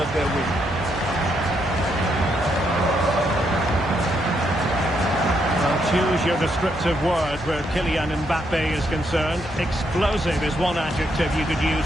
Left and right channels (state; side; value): normal; both; correlation 0.77